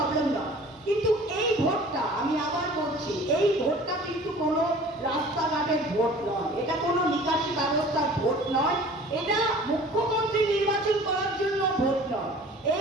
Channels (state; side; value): normal; both; correlation 0.46